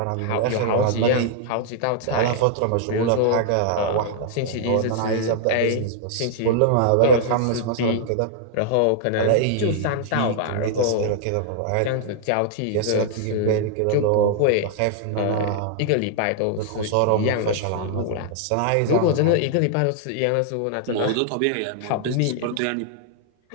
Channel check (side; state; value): both; different; correlation -0.01